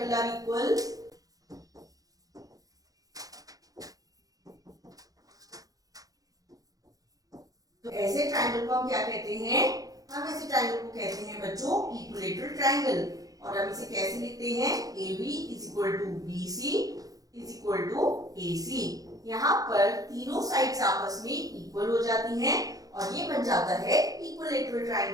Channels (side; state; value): left; late; 0.17 ms